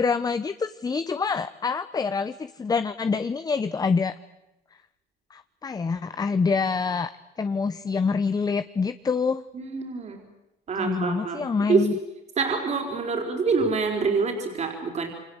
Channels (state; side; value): normal; both; correlation 0.60